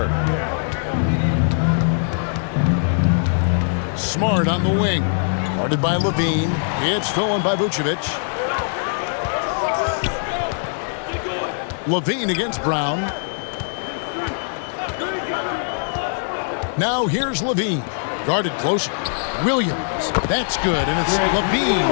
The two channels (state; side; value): silent; right; digital silence